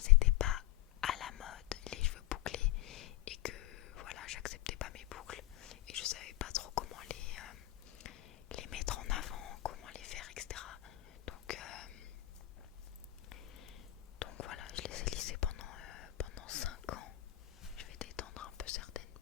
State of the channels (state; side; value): quieter; right; 16.4 dB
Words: pas à la mode les cheveux bouclés et que voilà, j'acceptais pas mes boucles et je savais pas trop comment les mettre en avant, comment les faire, etc. Donc voilà, je les ai lissés pendant 5 ans. Je vais détendre un peu certaines